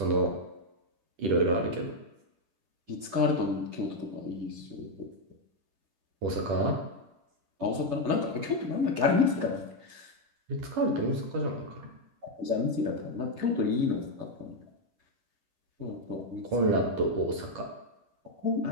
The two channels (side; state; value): left; late; 10 ms